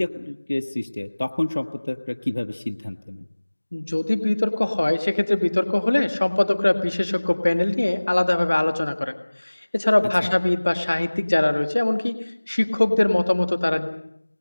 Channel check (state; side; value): inverted; both; correlation -1.00